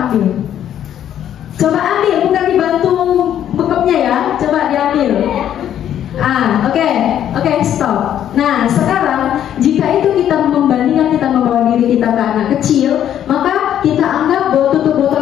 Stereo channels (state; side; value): quieter; right; 10.5 dB